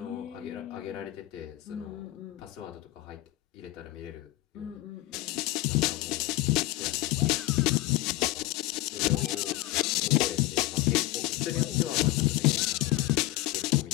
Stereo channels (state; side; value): quieter; right; 17.7 dB